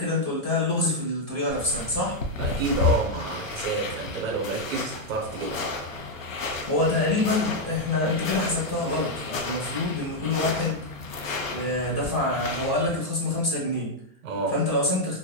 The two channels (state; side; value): late; left; 1.1 ms